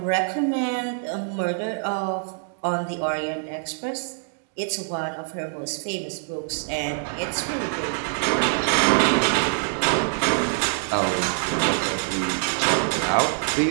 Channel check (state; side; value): silent; left; digital silence